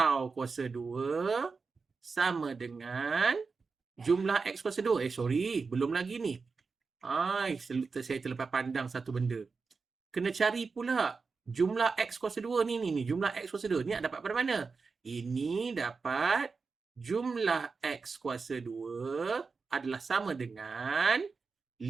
kuasa 2 sama dengan jumlah X kuasa 2. Sorry, belum lagi ni. Saya terlepas pandang satu benda. Kena cari pula jumlah X kuasa 2 ni. Jumlah X kuasa 2 ni nak dapat pada mana? Ini dapat jumlah X kuasa 2 adalah sama dengan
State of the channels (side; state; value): left; quieter; 4.7 dB